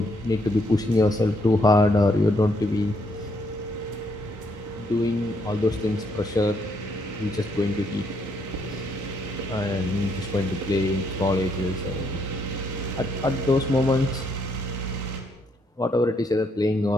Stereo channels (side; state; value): both; normal; correlation 0.73